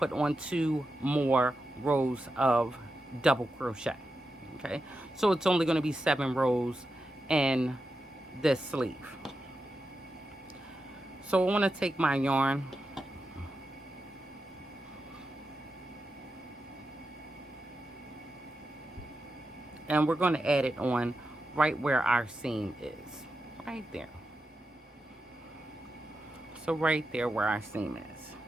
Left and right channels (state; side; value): normal; both; correlation 0.89